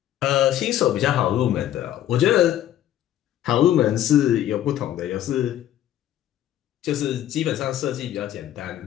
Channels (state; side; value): quieter; right; 12.0 dB